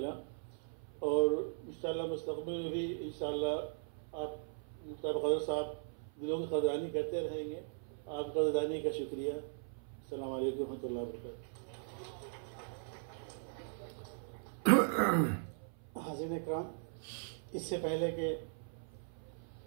और इंशाअल्लाह मुस्तक़बिल में भी इंशाअल्लाह आप मुख्तार कदर साहब दिलों की कदरानी करते रहेंगे। आपकी कदरानी का शुक्रिया। अस्सलाम वालेकुम रहमतुल्लाहि व बरकातहू। हाज़िरीन इकराम, इससे पहले कि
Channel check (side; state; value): left; silent; 52 dB below the other